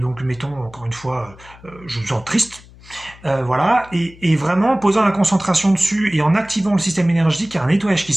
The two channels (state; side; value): noise; left; hum, 22 dB below the sound